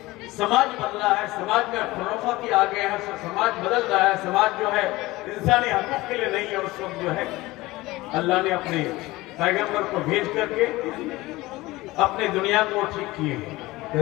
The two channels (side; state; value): right; quieter; 19.7 dB